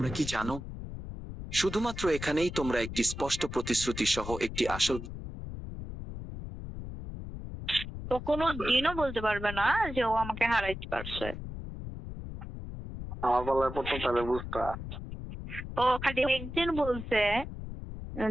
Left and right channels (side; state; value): left; noise; rumble, 9 dB below the sound